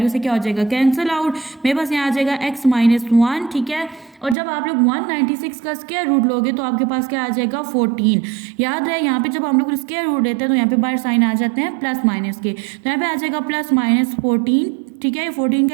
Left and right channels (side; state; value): left; drops out; at 4.4 s